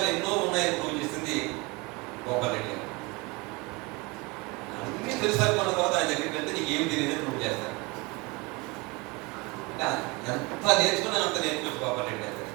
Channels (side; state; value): left; quieter; 26.0 dB